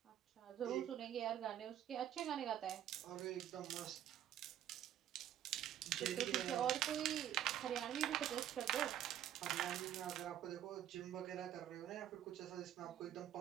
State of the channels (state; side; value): quieter; left; 11.2 dB